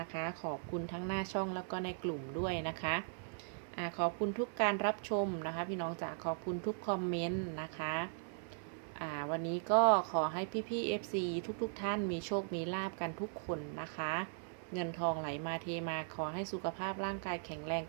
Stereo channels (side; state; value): left; silent; 52 dB below the other